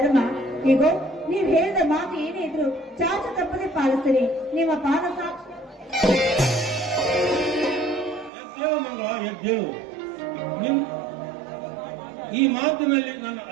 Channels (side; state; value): left; drops out; at 8.3 s